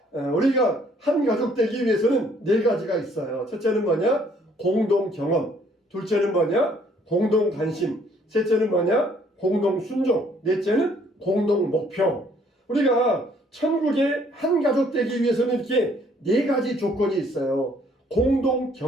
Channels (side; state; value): both; normal; correlation 0.63